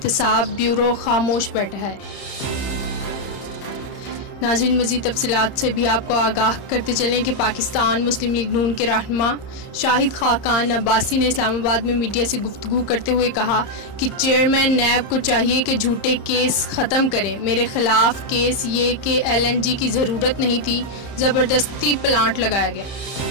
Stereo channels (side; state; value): right; late; 31 ms